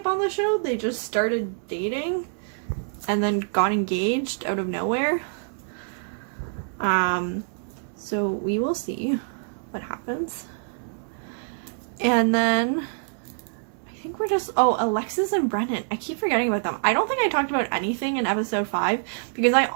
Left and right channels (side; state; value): left; silent; digital silence